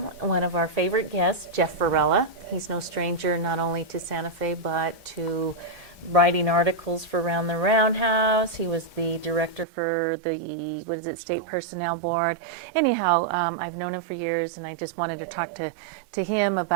one of our favorite guests, Jeff Varela. He's no stranger not only to Santa Fe, but to writing articles for Around the Roundhouse. He was the director for the, State Personnel Board. Anyhow, I've known him for years, and I just wanted to talk to him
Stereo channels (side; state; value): left; drops out; at 9.7 s